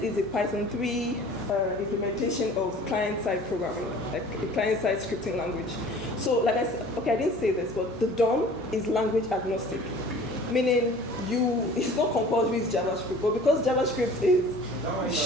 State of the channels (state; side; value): normal; both; correlation 0.46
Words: is a Python 3 implementation of client-side programming, like a client-side scripting language. So like I said, okay, I didn't say this, but the DOM is language agnostic, meaning it's not compulsory with JavaScript, but because JavaScript is